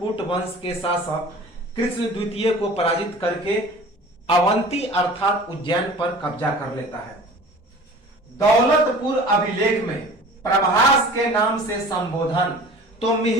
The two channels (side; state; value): both; normal; correlation 0.43